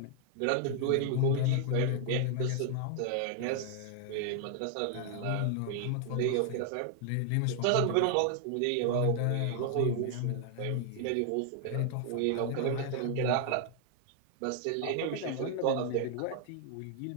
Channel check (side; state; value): both; different; correlation 0.00